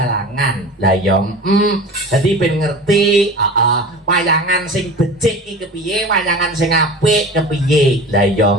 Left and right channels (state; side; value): normal; both; correlation 0.36